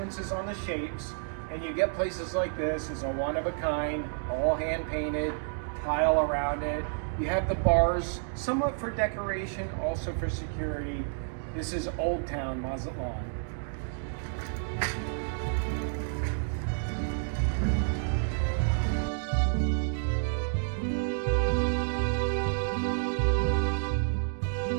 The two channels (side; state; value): left; silent; digital silence